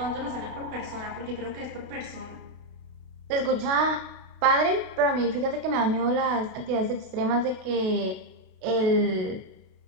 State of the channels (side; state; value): left; late; 32 ms